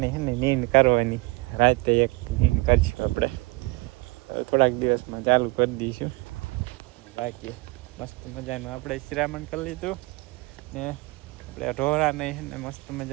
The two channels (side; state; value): left; quieter; 24.1 dB